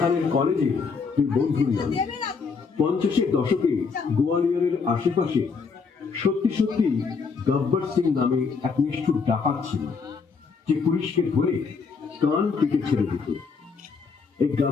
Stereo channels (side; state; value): right; quieter; 5.1 dB